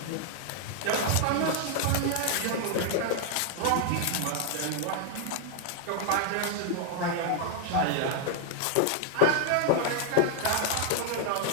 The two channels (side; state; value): both; different; correlation 0.00